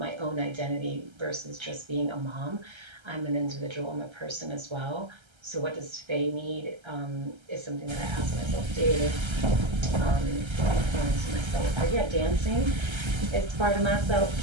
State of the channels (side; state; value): left; late; 1.3 ms